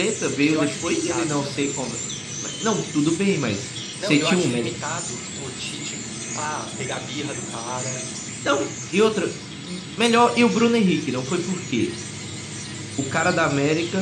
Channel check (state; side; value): identical; both; correlation 1.00